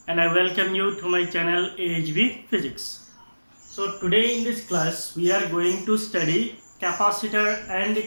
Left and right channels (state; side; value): inverted; both; correlation -1.00